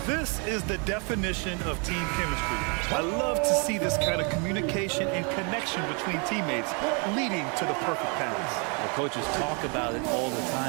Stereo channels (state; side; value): quieter; left; 35.2 dB